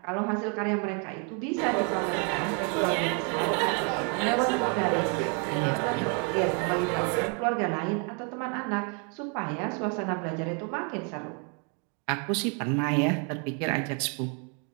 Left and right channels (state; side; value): quieter; left; 37.8 dB